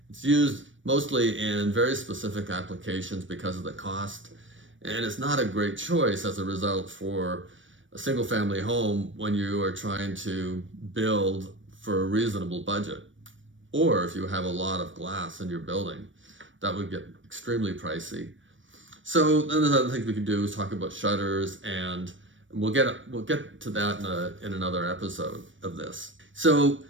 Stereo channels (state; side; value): late; left; 0.56 ms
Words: It's used mostly in very specific applications because of the cost, and it's not a great choice as a result for a single-family home when you are trying to build for a reasonable budget. Or if you have a lot of glass in your building, that would get extremely pricey. So then there's other things we can do is talk about shutters, and we'll get to that in another episode of this. So